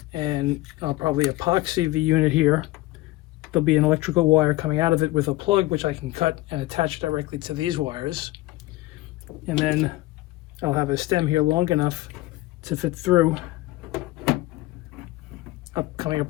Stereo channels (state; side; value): quieter; right; 18.5 dB